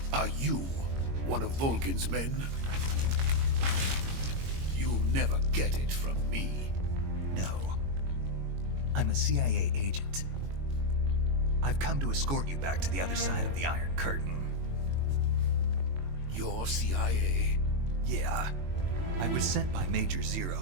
Are you one of Volgin's men? You'll never get it from me. No. I'm a CIA agent. I've come to escort you back to the other side of the Iron Curtain. You're CIA? Yeah. I was sent by Major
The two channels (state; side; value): late; left; 22 ms